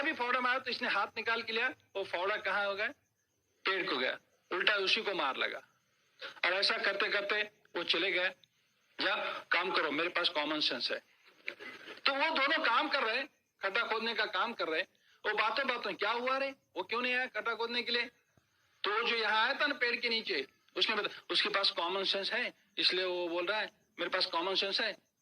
भी फावड़ा मारा तो इसने हाथ निकाल के लिया, वो फावड़ा कहाँ हो गया? पेड़ को गया, उल्टा उसी को मार लगा। और ऐसा करते करते वो चले गए, जा काम करो, मेरे पास कॉमन सेंस है। तो वो दोनों काम कर रहे, खड्डा खोदने का काम कर रहे। वो बातों क्या हुआ रे, वो क्यों नहीं आया खड्डा खोदने के लिए? तो जो यहाँ आया था ना पेड़ के नीचे, उसने बताया उसके पास कॉमन सेंस है, इसलिए वो बोल रहा है मेरे पास कॉमन सेंस है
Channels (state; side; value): identical; both; correlation 1.00